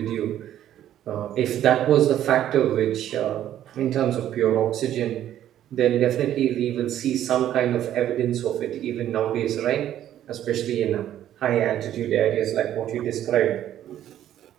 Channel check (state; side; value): quieter; left; 11.6 dB